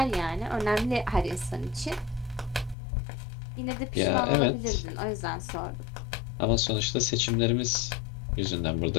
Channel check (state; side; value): drops out; right; at 2.8 s